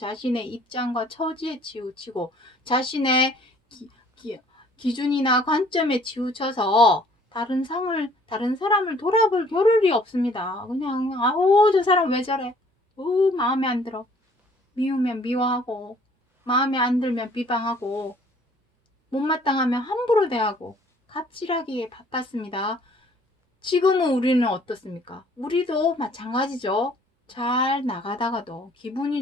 입장과 처지에 치우치고 자신의 기준이나 관점에 치우쳐서 다른 사람을 돌아볼 겨를이 없습니다. 그냥 저 사람 왜 저래? 마음에 안 들어. 미우면 미워하고 마음에 안 들면 비방하고 못마땅하면 함부로 대하고 갑질하기에 바빴습니다. 지금은 우리는 어떻습니까? 우리도 마찬가지죠. 잘 나가다가도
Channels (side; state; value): both; normal; correlation 0.57